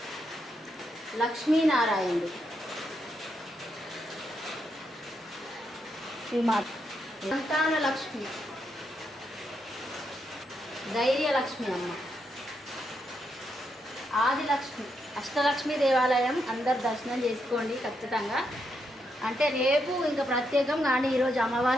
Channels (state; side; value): normal; both; correlation 0.81